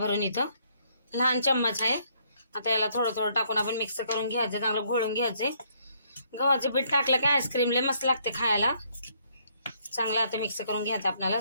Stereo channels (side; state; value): both; inverted; correlation -0.68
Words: इथं लहान चम्मच आहे। आता याला थोडं थोडं टाकून आपण मिक्स करून घ्यायचं, चांगलं घोळून घ्यायचे। गव्हाचे पीठ टाकलं की आईस्क्रीम लय मस्त लागते खायला। चांगलं आता मिक्स करून घ्यायचं आपल्याला